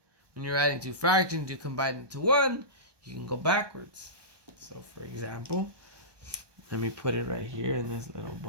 when you're adding two fractions, you combine them to one, you can go backwards. So for example, let me put it right here in this little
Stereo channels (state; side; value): late; left; 1.2 ms